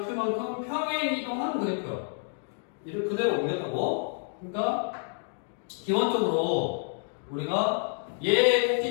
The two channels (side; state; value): right; silent; 59 dB below the other